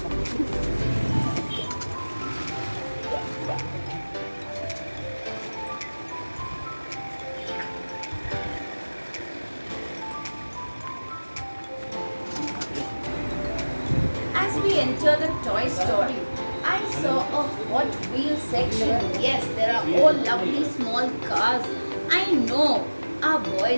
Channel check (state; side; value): inverted; both; correlation -1.00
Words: As we enter the toy store, I saw a Hot Wheels section. Yes, there are all lovely small cars. I know our